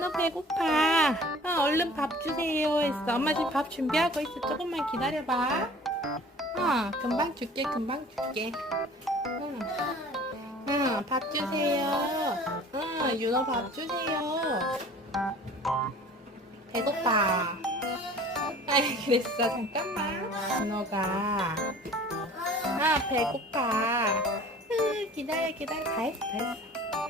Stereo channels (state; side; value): normal; both; correlation 0.46